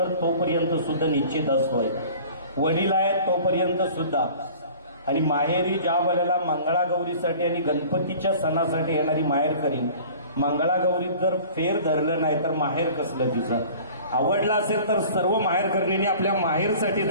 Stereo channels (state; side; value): inverted; both; correlation -0.45